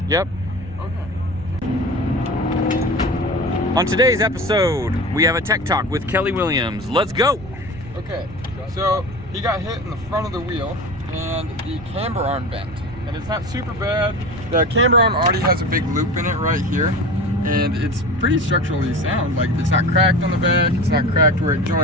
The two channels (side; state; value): right; noise; rumble, 16 dB below the sound